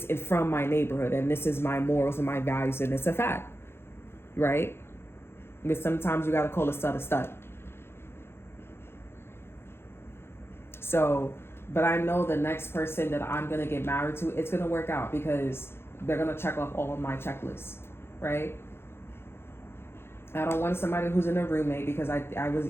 from my neighborhood and this is my morals and my values and it's a fact, right? But sometimes you gotta call a stud a stud. So, but I know the next person that I'm gonna get married to, it's gonna work out because they're gonna check off all of my checklists, right? I don't want somebody who's in a roommate because I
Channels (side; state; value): right; late; 0.12 ms